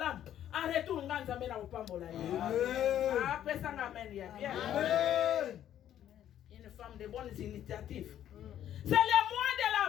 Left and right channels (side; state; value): right; quieter; 11.0 dB